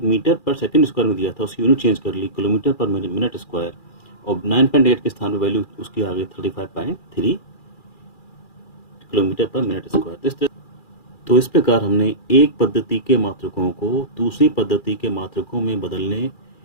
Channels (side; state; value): right; late; 2.4 ms